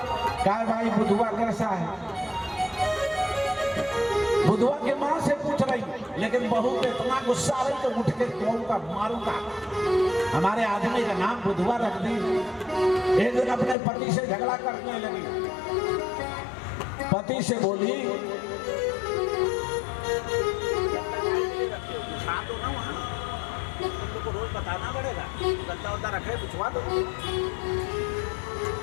कहा भाई बुधुआ कैसा है? बुधुआ के मां से पूछ रही, लेकिन बहू को इतना गुस्सा आ रही तो उठ के कहूँगा मारूंगा। हमारे आदमी का नाम बुधवा रख दी। एक दिन अपने पति से झगड़ा करने लगी। पति से बोली तुमको रोज बताना पड़ेगा, गद्दा उद्दा रखे पूछवा दो।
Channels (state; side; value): drops out; right; at 13.8 s